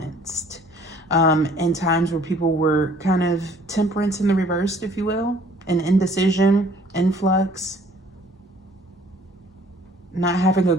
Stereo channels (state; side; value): normal; both; correlation 0.56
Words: in times where people were kind of temperance in the reversed, if you will, and indecision, influx, not having a